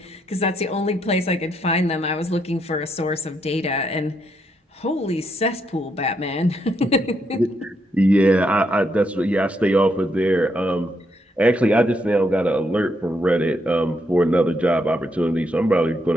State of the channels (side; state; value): both; normal; correlation 0.77